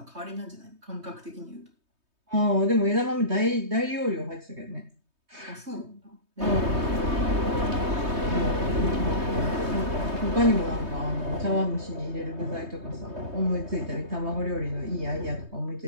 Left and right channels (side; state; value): left; late; 3.2 ms